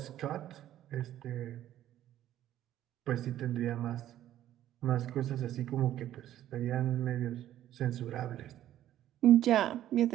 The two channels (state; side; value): quieter; left; 12.5 dB